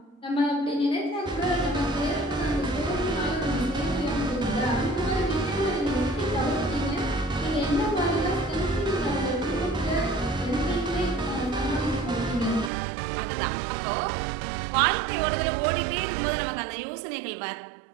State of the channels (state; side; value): drops out; left; at 12.7 s